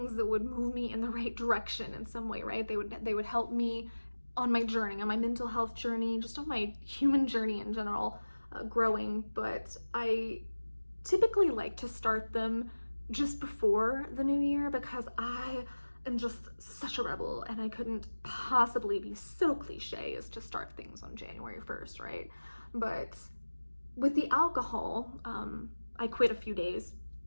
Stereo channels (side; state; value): both; inverted; correlation -1.00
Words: that would move me in the right direction in some way, right? They would help me on my journey, on my mental health journey, just on my human journey in general, growing. But I typically like to start them just before the new year because I am just such a rebel and I couldn't possibly be so cliche as to start things on January 1st, right? But with the alcohol, I quit a few days